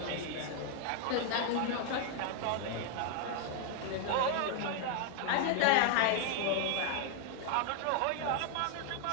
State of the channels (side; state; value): both; different; correlation 0.00